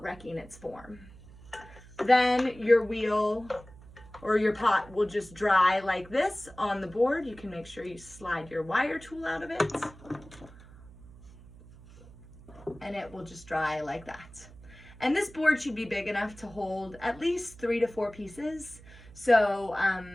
wrecking its form. Then your wheel or your pot will just dry like this on the board. You can make sure you slide your wire tool out of it, and it will just dry like that. And this board should be big enough to hold at least 3 to 4 pieces, so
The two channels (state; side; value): noise; right; hum, 20 dB below the sound